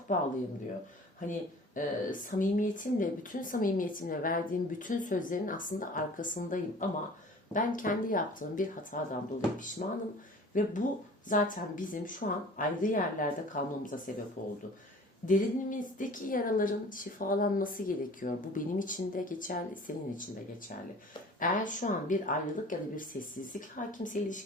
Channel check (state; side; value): normal; both; correlation 0.45